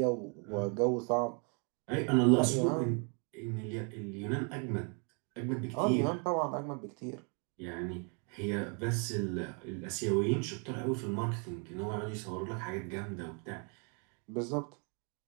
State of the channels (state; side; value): quieter; left; 37.8 dB